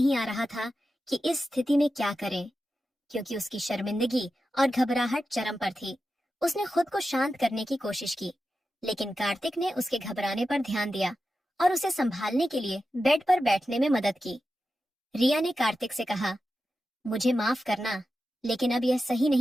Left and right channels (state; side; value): normal; both; correlation 0.91